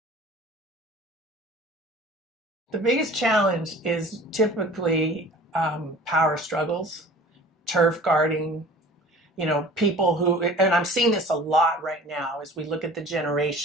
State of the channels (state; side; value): normal; both; correlation 0.44